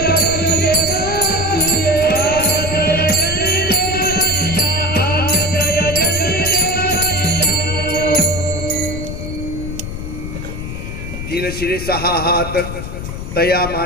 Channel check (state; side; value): noise; left; rumble, 7 dB below the sound